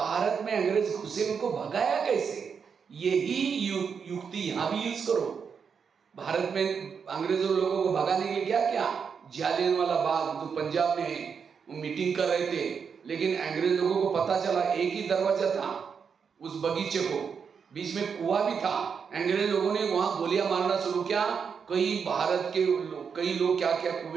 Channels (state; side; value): quieter; left; 6.4 dB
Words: में अंग्रेज घुसे, उनको भगाया कैसे? यही युक्ति यहाँ भी यूज करो। भारत में अंग्रेजों लोगों को भगाने के लिए क्या क्या, जालियनवाला बाग जो पंजाब में है, वो मीटिंग कर रहे थे, लेकिन अंग्रेज लोगों को पता चला एक ही दरवाजा था उस बगीचे को, बीच में कुआं भी था। अंग्रेज लोगों ने वहां गोलियां मारना शुरू किया। कई भारत के कई लोग क्या क्या